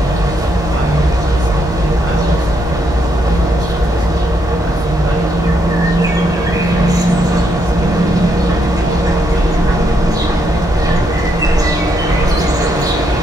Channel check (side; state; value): both; normal; correlation 0.76